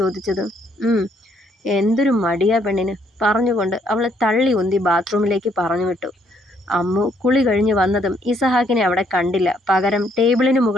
എന്തൊരു മടിയാ പെണ്ണിന്, പറഞ്ഞുകൊണ്ട് അവളെ തള്ളി ഉന്തി ബാത്റൂമിലേക്ക് പറഞ്ഞു വിട്ടു. അമ്മു കുളി കഴിഞ്ഞ് വന്നതും ഇസഹാക്കിനെ അവിടെ കണ്ടില്ല. പകരം ടേബിളിന്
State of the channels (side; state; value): both; normal; correlation 0.69